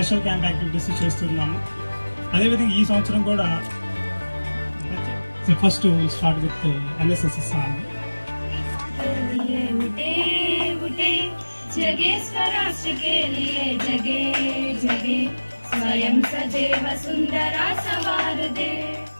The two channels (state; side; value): inverted; both; correlation -1.00